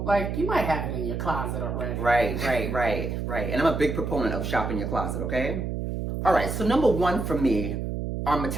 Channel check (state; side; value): noise; right; hum, 3 dB below the sound